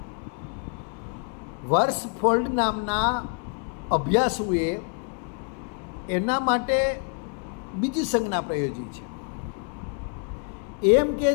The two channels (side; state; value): right; quieter; 39.9 dB